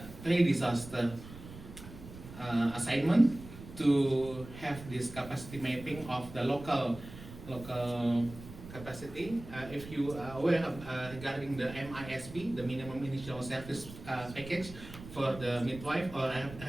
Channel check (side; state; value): right; noise; rumble, 15 dB below the sound